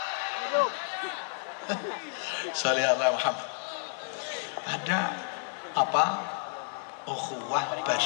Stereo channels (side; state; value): right; silent; digital silence